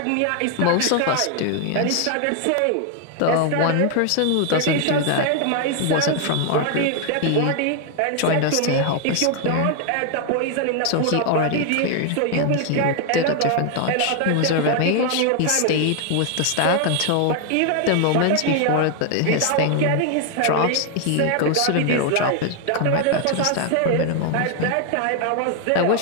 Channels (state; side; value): different; both; correlation 0.00